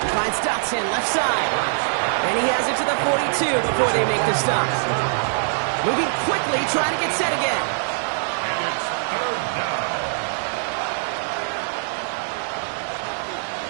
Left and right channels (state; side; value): silent; left; 57 dB below the other